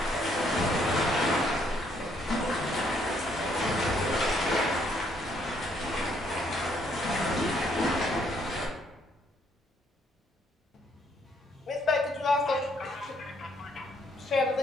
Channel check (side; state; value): both; normal; correlation 0.69